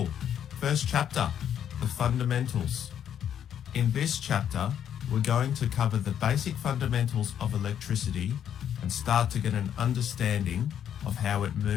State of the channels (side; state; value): right; quieter; 9.4 dB